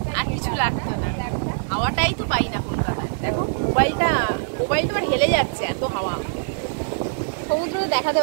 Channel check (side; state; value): left; silent; 63 dB below the other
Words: আর কিছু লাগতো না। হাওয়াটাই তো পাই না কলকাতায়। দেখো মোবাইলটা আর হেলে যাচ্ছে, এত হাওয়া। সমুদ্র দেখাতে